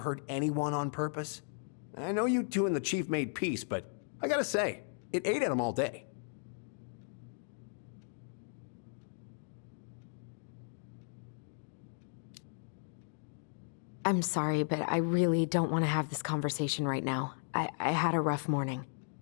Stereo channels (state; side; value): silent; right; digital silence